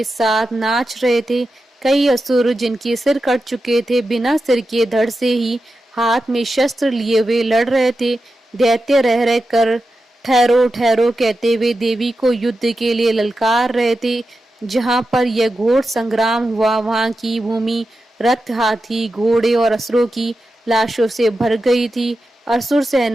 साथ नाच रहे थे। कई असुर जिनके सिर कट चुके थे बिना सिर के धड़ से ही हाथ में शस्त्र लिए हुए लड़ रहे थे। दैत्य रह रह कर ठहरो ठहरो कहते हुए देवी को युद्ध के लिए ललकार रहे थे। जहां पर यह घोर संग्राम हुआ वहां की भूमि रथ, हाथी, घोड़े और असुरों की लाशों से भर गई थी। असुर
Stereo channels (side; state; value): both; normal; correlation 0.90